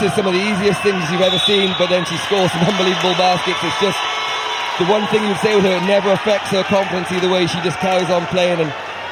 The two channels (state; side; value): identical; both; correlation 1.00